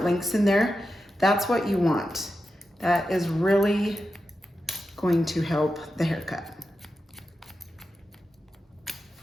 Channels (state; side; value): normal; both; correlation 0.90